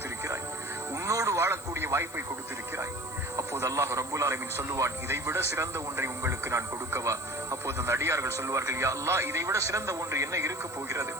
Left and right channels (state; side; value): noise; left; hiss, 18 dB below the sound